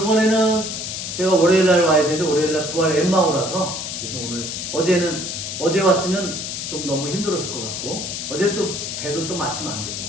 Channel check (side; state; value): left; noise; hiss, 5 dB below the sound